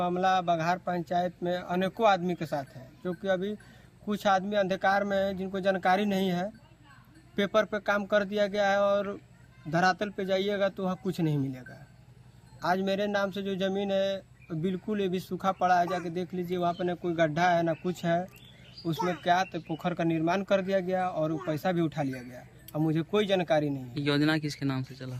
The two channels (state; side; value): identical; both; correlation 1.00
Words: बघार पंचायत में अनेकों आदमी के साथ है। जो कि अभी कुछ आदमी अंधकार में है जिनको जानकारी नहीं है, पेपर पे काम कर दिया गया है और धरातल पे जाइएगा तो वहाँ कुछ नहीं मिलेगा। आज मेरे नाम से जो ज़मीन है बिल्कुल ये भी सूखा पड़ा है, जाके देख लीजिए, वहाँ पे ना कोई गड्ढा है ना कुछ है। उसमें क्या तो पोखर का निर्माण कर दिया गया और वो पैसा भी उठा लिया गया। अब मुझे कोई जानकारी नहीं है। योजना किसके नाम से चला?